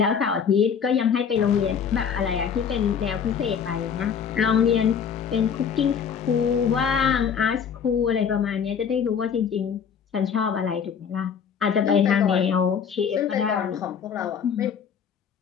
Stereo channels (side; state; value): right; quieter; 7.3 dB